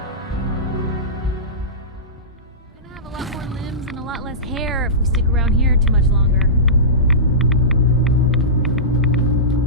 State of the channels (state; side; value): normal; both; correlation -0.20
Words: Gonna have a lot more limbs and a lot less hair if we stick around here too much longer.